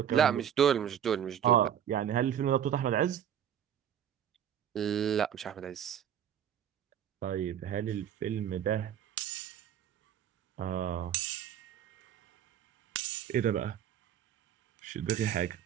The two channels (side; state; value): left; quieter; 9.7 dB